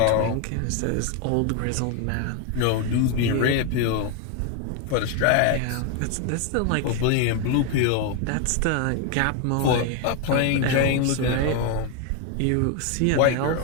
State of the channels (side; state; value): both; different; correlation 0.01